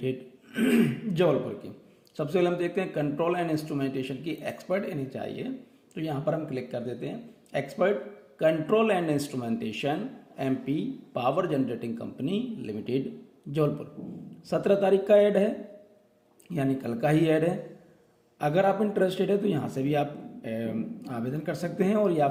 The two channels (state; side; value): identical; both; correlation 1.00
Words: Jabalpur की। सबसे पहले हम देखते हैं कंट्रोल एंड इंस्ट्रूमेंटेशन की एक्सपर्ट इन्हें चाहिए, तो यहाँ पर हम क्लिक कर देते हैं expert control and instrumentation MP power generating company limited Jabalpur. 17 तारीख का ऐड है, यानी कल का ही ऐड है। अगर आप इंटरेस्टेड है तो यहाँ से भी आप आवेदन कर सकते हैं और या